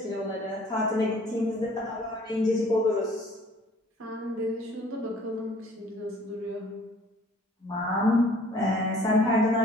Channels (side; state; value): both; normal; correlation 0.55